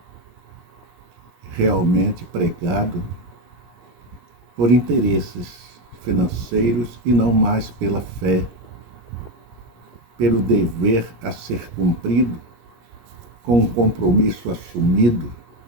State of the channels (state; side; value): late; left; 17 ms